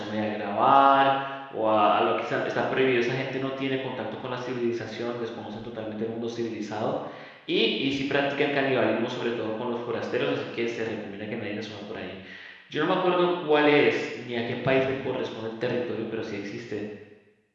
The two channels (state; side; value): identical; both; correlation 1.00